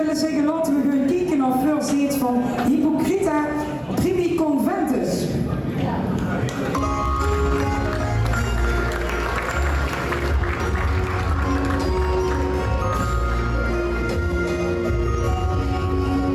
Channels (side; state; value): both; identical; correlation 1.00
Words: zeggen, laten we gewoon kijken naar First Dates van Hypocrita Primi Conventus.